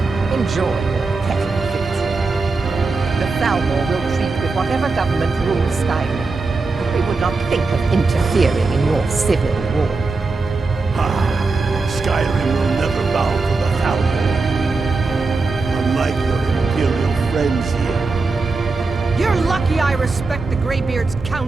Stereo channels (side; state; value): left; quieter; 3.9 dB